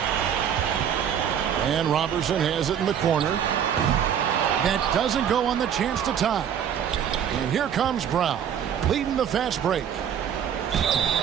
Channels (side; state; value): left; quieter; 8.8 dB